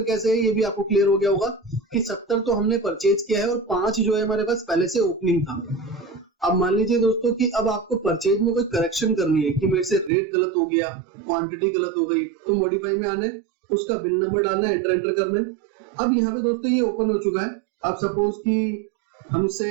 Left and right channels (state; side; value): drops out; left; at 10.1 s